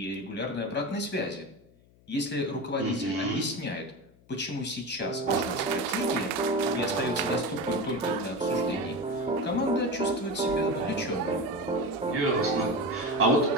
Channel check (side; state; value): left; noise; hum, 28 dB below the sound